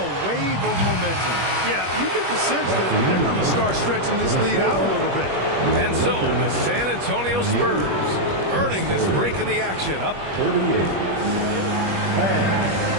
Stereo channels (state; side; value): late; left; 21 ms